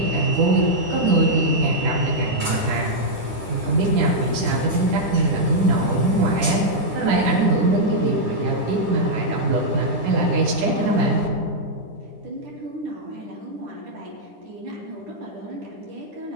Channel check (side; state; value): left; late; 9.9 ms